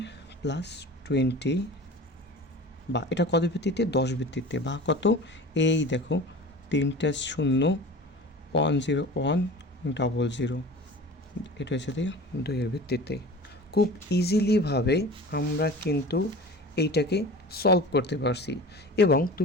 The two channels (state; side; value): normal; both; correlation 0.38